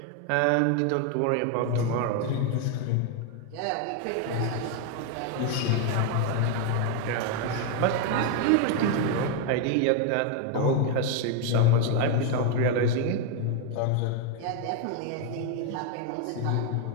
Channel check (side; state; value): both; different; correlation 0.01